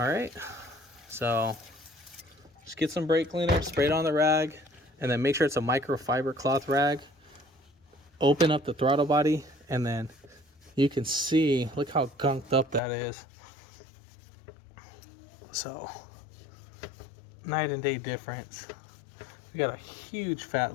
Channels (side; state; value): right; drops out; at 12.8 s